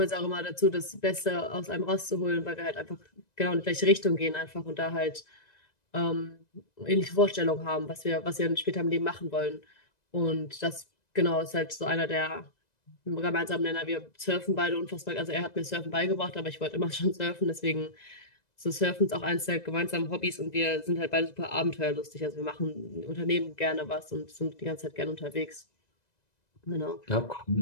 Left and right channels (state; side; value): late; right; 1.9 ms